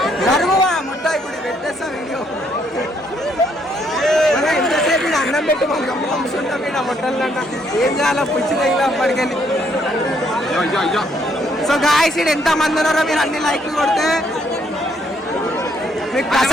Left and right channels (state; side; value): normal; both; correlation 0.70